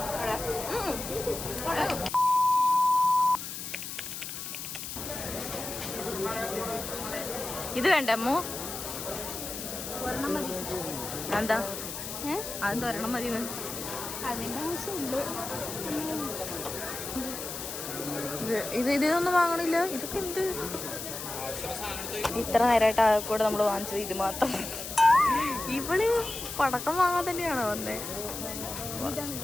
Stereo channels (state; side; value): noise; left; hiss, 7 dB below the sound